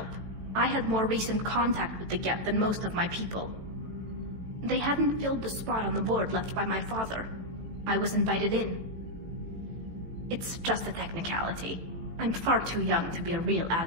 I had more recent contact with the Geth than most of my people. They hadn't filled the spot on the board left by my father. I was invited in. It's just a technicality. I'm far too young to be a real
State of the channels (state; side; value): late; left; 18 ms